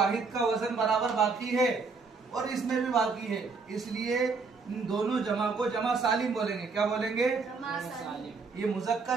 का वजन बराबर बाकी है और इसमें भी बाकी है, इसलिए इन दोनों जमा को जमा सालिम बोलेंगे। क्या बोलेंगे? जमा सालिम। ये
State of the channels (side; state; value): left; quieter; 4.6 dB